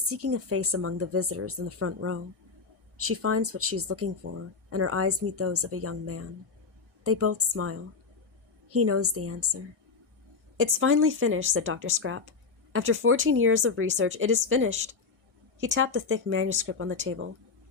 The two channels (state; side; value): quieter; right; 4.8 dB